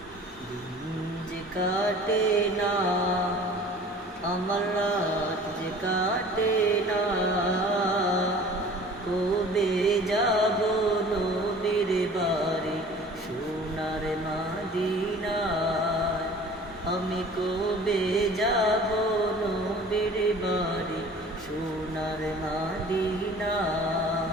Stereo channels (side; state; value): both; normal; correlation 0.46